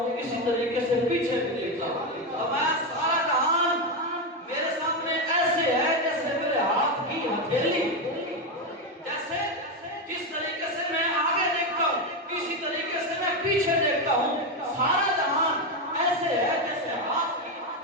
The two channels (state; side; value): normal; both; correlation 0.10